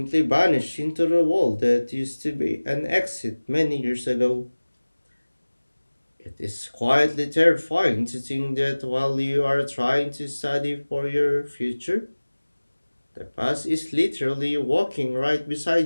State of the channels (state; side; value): inverted; both; correlation -1.00